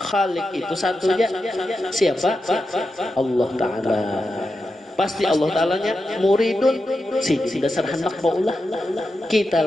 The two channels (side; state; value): both; normal; correlation 0.89